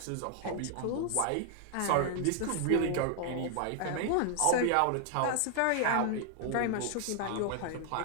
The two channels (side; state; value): both; different; correlation 0.00